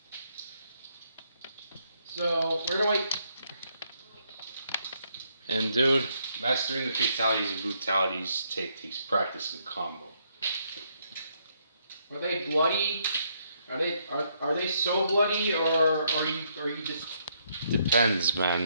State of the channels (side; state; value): both; inverted; correlation -0.73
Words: So, where do I... And dude, mastering the fatalities and brutalities takes practice and combo. Are they bloody? Are they so bloody, or are you just... Depends,